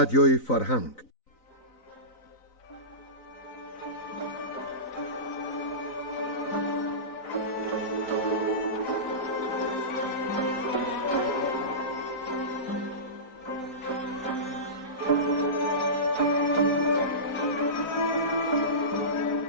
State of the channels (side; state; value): right; late; 4.0 ms